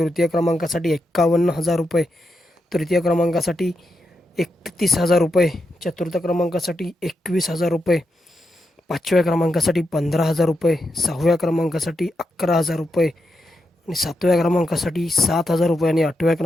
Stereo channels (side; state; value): both; normal; correlation 0.85